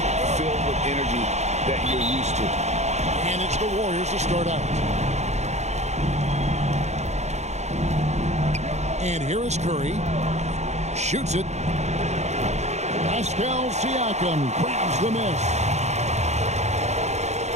filled with energy that you're used to. And it's the Warriors to start out. And here is Curry. Shoots it. Pascal Siakam grabs the miss.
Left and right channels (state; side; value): late; left; 0.33 ms